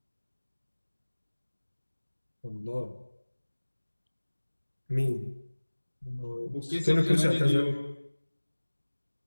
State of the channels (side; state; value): both; inverted; correlation -1.00